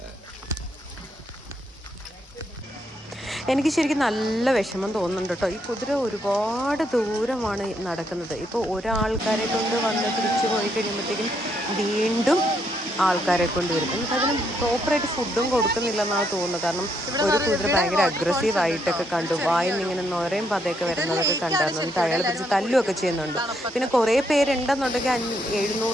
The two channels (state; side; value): normal; both; correlation 0.75